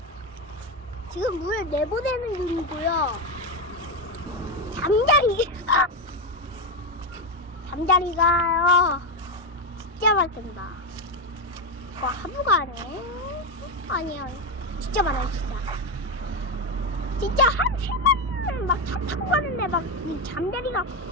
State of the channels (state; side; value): normal; both; correlation 0.11